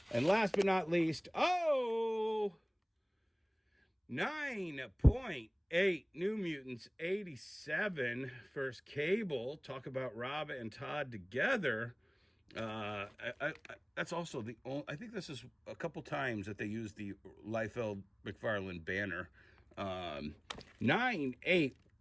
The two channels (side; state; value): both; identical; correlation 1.00